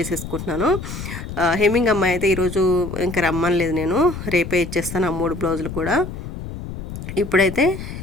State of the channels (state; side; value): noise; left; rumble, 9 dB below the sound